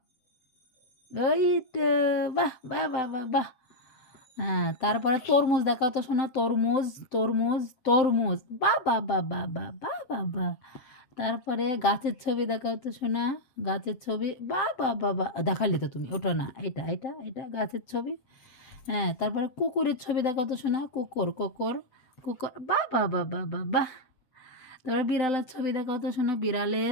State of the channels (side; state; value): right; late; 7.8 ms